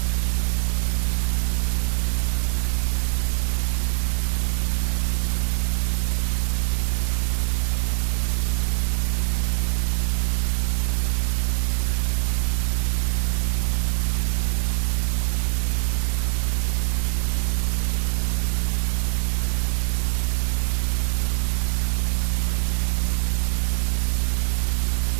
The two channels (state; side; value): silent; left; 63 dB below the other